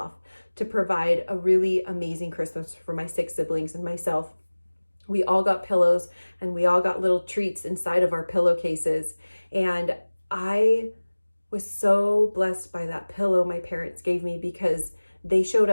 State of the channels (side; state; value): both; inverted; correlation -1.00